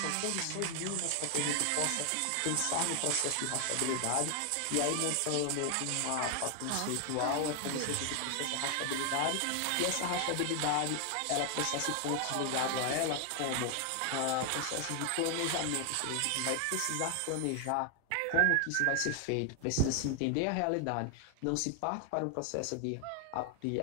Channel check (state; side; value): different; both; correlation 0.00